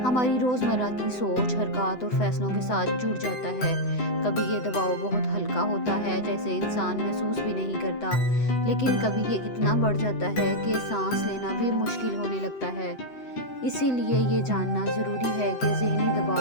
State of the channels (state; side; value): late; right; 7.9 ms